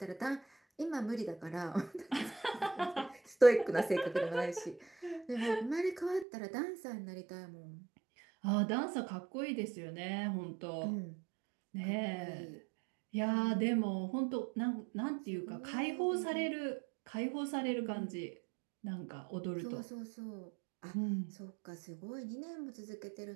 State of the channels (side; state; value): left; drops out; at 6.2 s